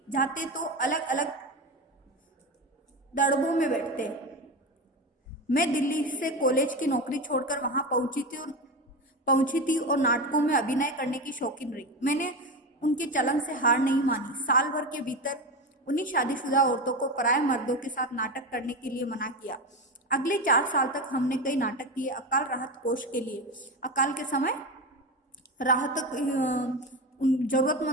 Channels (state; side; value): normal; both; correlation 0.20